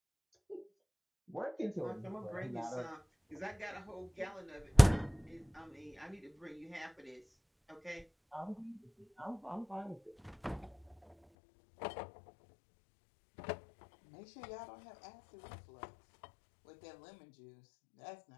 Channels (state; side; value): drops out; right; at 11.2 s